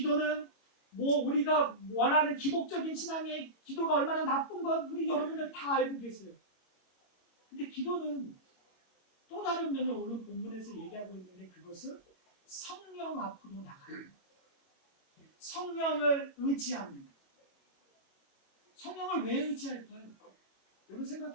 우리가 원하는 기복적인 신앙의 기도가 얼마나 나쁜 건 우리 여러분들 다 알고 계세요. 근데 기도는 또 다른 면을 오늘 본문에서 얘기하고 있는데 그것은 성령 앞으로 나가요. 성령을 의지합니다. 성령을 왜 의지할까요? 여러분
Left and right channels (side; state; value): right; late; 21 ms